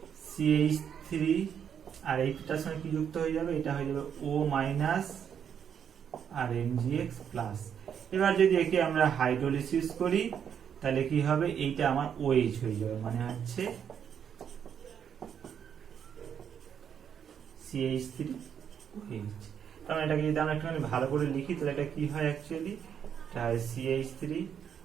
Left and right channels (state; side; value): quieter; left; 8.2 dB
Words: CH3, আর এইটার সঙ্গে কি যুক্ত হয়ে যাবে, এটা হয়ে যাবে O মাইনাস আর MgX প্লাস। এবার যদি একে আমরা হাইড্রোলিসিস করি তাহলে কি হবে, এইটা আমার OH হয়ে যাবে, মানে হচ্ছে CH3OH। কারণ এটাকে যদি আমরা একটুখানি ভালো করে লিখি তাহলে এটা কি হয় অ্যাকচুয়ালি, এটা হয়